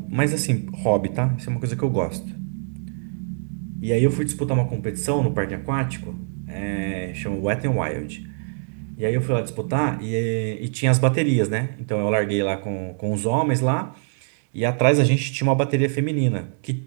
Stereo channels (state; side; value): silent; left; digital silence